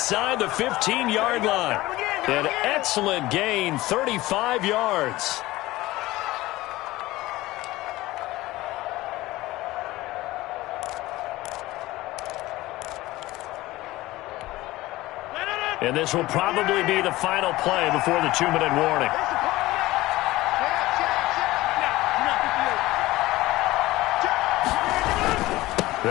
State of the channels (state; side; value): quieter; right; 18.2 dB